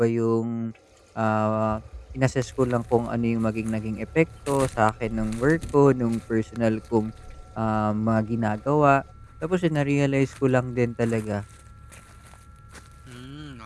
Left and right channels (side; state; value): both; identical; correlation 1.00